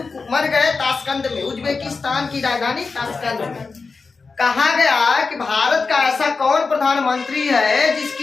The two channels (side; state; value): right; quieter; 4.5 dB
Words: मर गए ताशकंद में, उज्बेकिस्तान की राजधानी ताशकंद में। कहा गया कि भारत का ऐसा कौन प्रधानमंत्री है